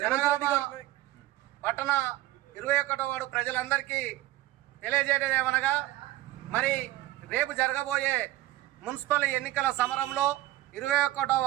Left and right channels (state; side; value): quieter; left; 16.6 dB